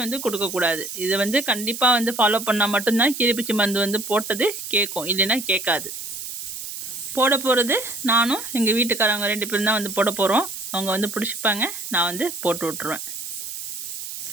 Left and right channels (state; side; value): noise; right; hiss, 8 dB below the sound